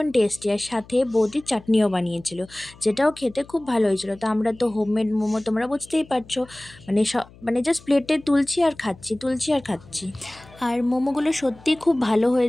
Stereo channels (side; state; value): left; noise; hum, 23 dB below the sound